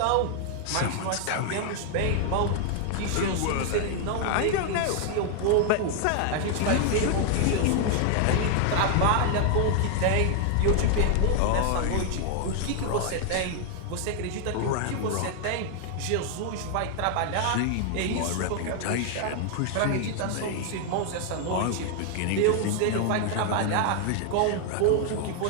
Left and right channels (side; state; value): both; different; correlation 0.00